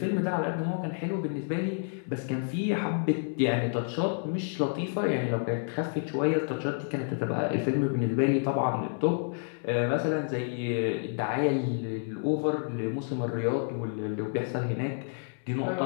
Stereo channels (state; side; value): silent; right; 58 dB below the other